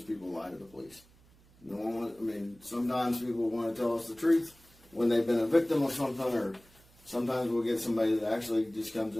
people lie to the police. No one, sometimes people want to tell us the truth when they've been a victim of something, or sometimes we'll get somebody that actually just comes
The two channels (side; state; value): right; noise; hum, 28 dB below the sound